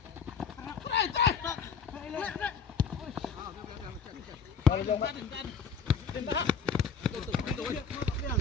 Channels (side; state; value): right; quieter; 5.7 dB